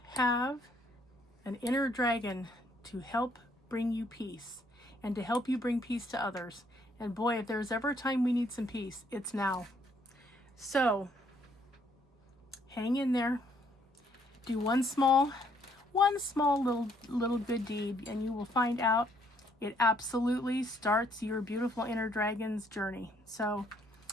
have an inner dragon to help bring you peace and to help you bring peace to others. And boy, if there's ever a time we need some peace, it's now. So hang in there. Do one small little good deed, and you will find out it absolutely starts your beautiful inner dragon's journey. So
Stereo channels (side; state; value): both; normal; correlation 0.67